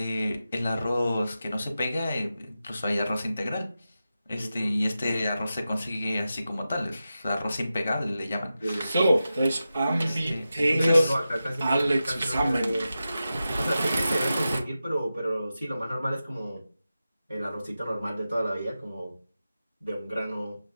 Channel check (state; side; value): inverted; both; correlation -0.92